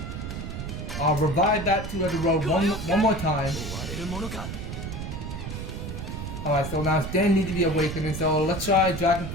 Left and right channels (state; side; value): noise; right; rumble, 6 dB below the sound